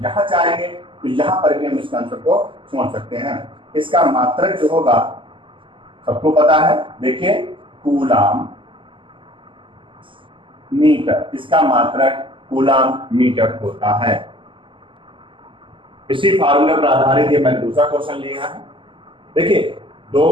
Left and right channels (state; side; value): late; left; 0.25 ms